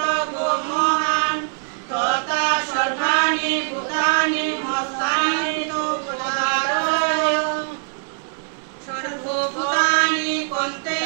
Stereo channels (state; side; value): silent; left; 63 dB below the other